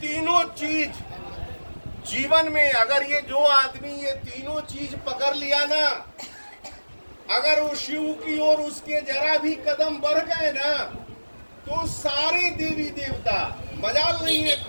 तीनों चीज जीवन में, अगर ये जो आदमी ये तीनों चीज पकड़ लिया ना, अगर वो शिव की ओर उसके जरा भी कदम बढ़ गए ना, तो सारे देवी देवता, मजाल नहीं है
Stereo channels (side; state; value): both; inverted; correlation -1.00